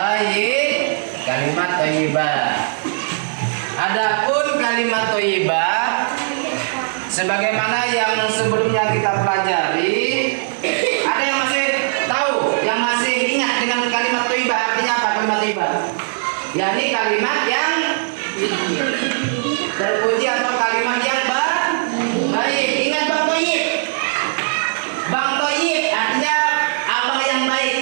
kalimat thayyibah. Adapun kalimat thayyibah sebagaimana yang sebelumnya kita pelajari, ada yang masih tahu, yang masih ingat dengan kalimat thayyibah artinya apa? Kalimat thayyibah yakni kalimat yang terpuji atau kalimat yang baik. Ingat Bang Thayyib. Bang Thayyib artinya abang yang baik.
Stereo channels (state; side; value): silent; left; digital silence